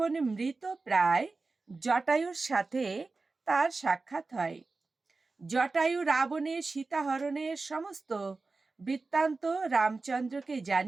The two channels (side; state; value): left; quieter; 3.8 dB